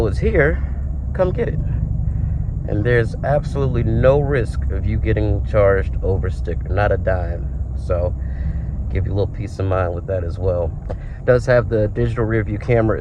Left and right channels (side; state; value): both; identical; correlation 1.00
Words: it's here, come get it. And there's absolutely no risk of you getting charged over sticker, not a dime. So give you a little peace of mind with that as well. It does have the digital rear view